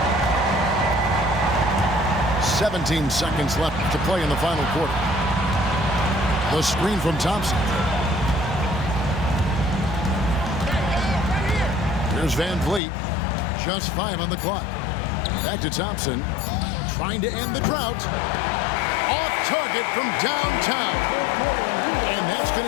"17 seconds left to play in the final quarter. The screen from Thompson. Here's Van Vliet. Just 5 on the clock. Back to Thompson. Trying to end the drought. Off target from downtown. And that's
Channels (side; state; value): right; drops out; at 12.8 s